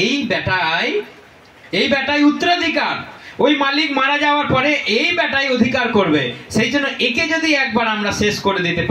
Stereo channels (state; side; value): identical; both; correlation 1.00